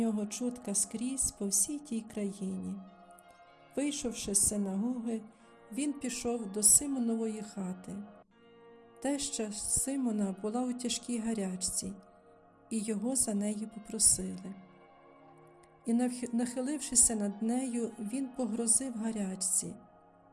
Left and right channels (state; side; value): identical; both; correlation 1.00